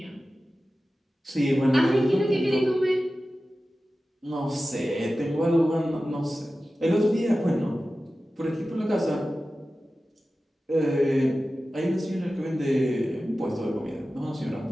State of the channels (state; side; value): normal; both; correlation 0.95